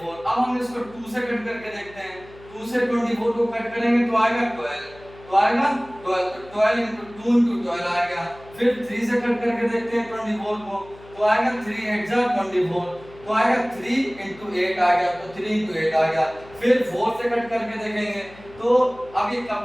अब हम इसको 2 से कट करके देखते हैं। 2 से 24 को कट करेंगे तो आएगा 12, तो आएगा 12, तो 12 into 2 into 12 आएगा। फिर 3 से कट करके देखते हैं 24 को, तो आएगा 3 8 जा 24, तो आएगा 3 into 8 आ गया, तो 3 into 8 आ गया। फिर 4 से कट करके देखेंगे तो अब ये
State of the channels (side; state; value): left; noise; hum, 21 dB below the sound